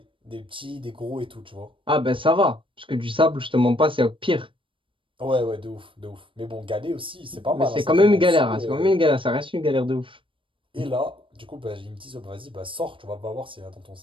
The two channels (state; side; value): late; left; 0.25 ms